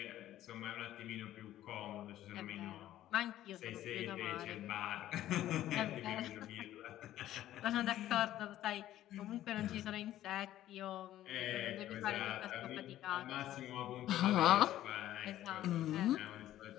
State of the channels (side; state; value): right; quieter; 13.3 dB